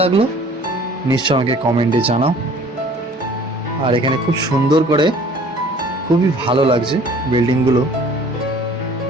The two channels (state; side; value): normal; both; correlation 0.51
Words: লাগলো নিশ্চয় আমাকে কমেন্টে জানাও। আর এখানে খুব সুন্দর করে, খুবই ভালো লাগছে বিল্ডিংগুলো,